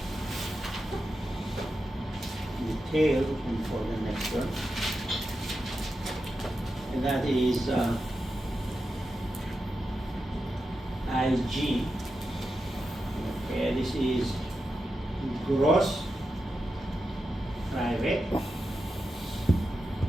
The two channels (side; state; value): both; normal; correlation 0.89